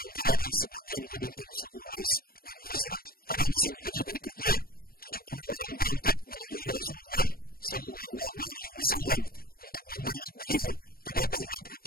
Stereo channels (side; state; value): right; late; 0.43 ms